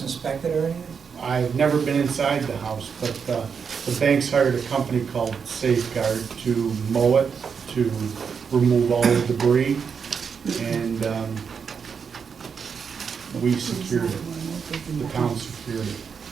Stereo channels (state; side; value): quieter; left; 6.3 dB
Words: inspect it or anything? I've never been inside the house, but the bank's hired a company called Safeguard to mow it, to remove all the debris, and we secured it. The town secured it.